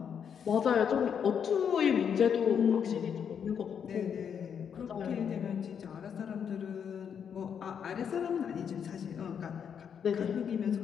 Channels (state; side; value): quieter; right; 7.6 dB